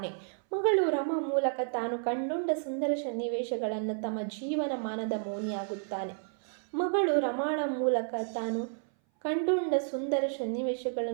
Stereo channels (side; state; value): left; silent; 57 dB below the other